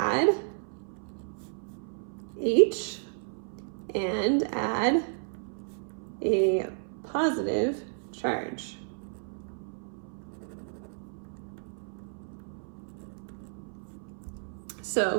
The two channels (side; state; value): left; silent; 55 dB below the other